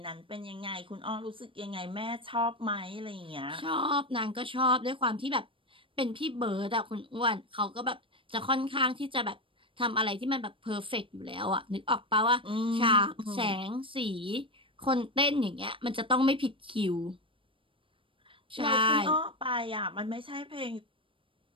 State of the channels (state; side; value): late; left; 0.25 ms